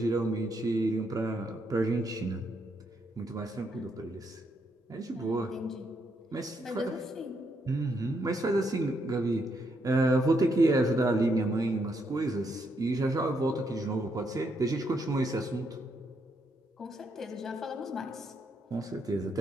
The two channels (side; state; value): both; normal; correlation 0.76